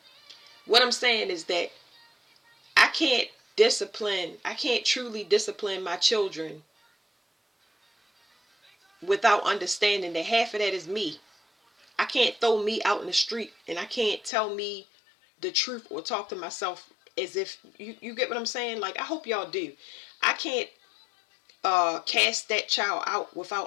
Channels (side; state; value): right; drops out; at 14.3 s